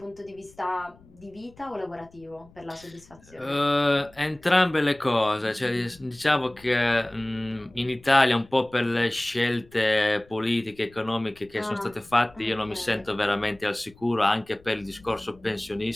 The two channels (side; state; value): left; noise; rumble, 26 dB below the sound